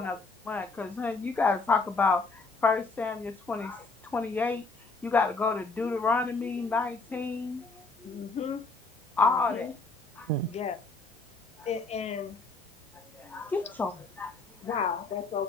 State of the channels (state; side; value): quieter; right; 3.8 dB